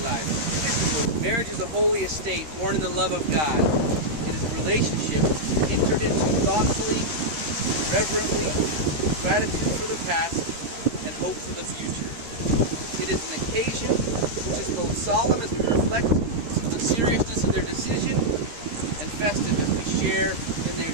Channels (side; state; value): left; late; 13 ms